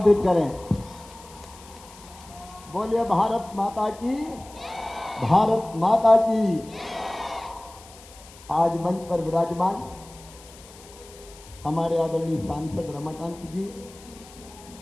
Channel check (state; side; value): noise; left; hiss, 21 dB below the sound